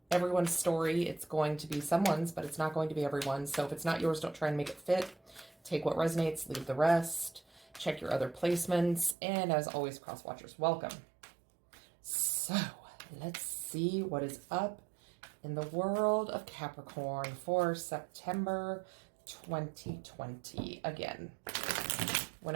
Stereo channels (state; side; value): drops out; left; at 9.2 s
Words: everyone's story. It's going to be someone's, but it's not going to be everyone's. So if it's not yours, don't try and make it fit. Take what resonates, leave the rest. Check your other placements, and as always, cross watchers welcome. So let's see what is up in the world of Capricorn for September 2020. Again,